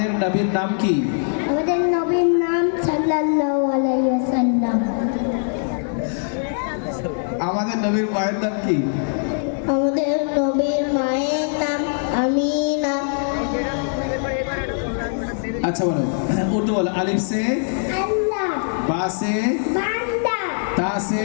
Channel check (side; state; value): right; silent; digital silence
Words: নবীর নাম কি? আমাদের নবীর নাম সাল্লাল্লাহু আলাইহি ওয়াসাল্লাম। আমাদের নবীর মায়ের নাম কি? আমাদের নবীর মায়ের নাম আমিনা। আচ্ছা বলো, উর্দু বলো। আলিফ সে, আল্লাহ, বা সে, বান্দা, তা সে।